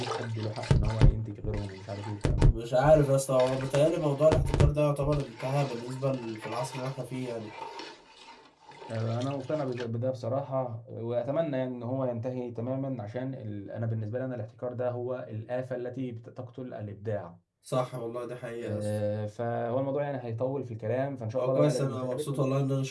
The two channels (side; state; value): both; identical; correlation 1.00